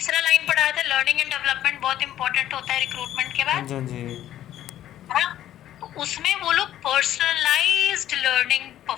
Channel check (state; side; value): quieter; right; 12.3 dB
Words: लाइन पढ़ाया था, लर्निंग एंड डेवलपमेंट बहुत इंपॉर्टेंट होता है रिक्रूटमेंट के हाँ बाद, जी। हाँ जी। है ना। तो उसमें वो लोग पर्सनलाइज्ड लर्निंग